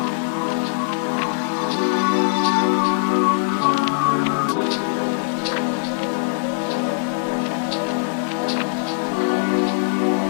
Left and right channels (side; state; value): right; silent; digital silence